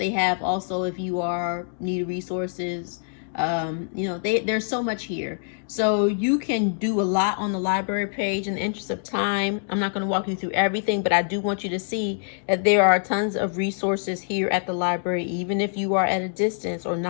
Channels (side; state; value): right; silent; digital silence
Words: have also, if you need resources, there's so much here. So you can do a lot on the library page. In the interest of time, I'm not going to walk you through everything, but I do want you to see that there are tons of resources here at the library, even if you are at a distance or